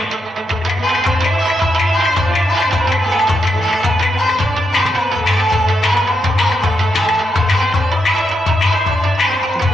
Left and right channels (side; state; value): both; normal; correlation 0.83